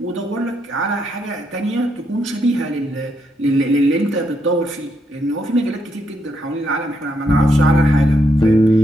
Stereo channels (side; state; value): both; normal; correlation 0.78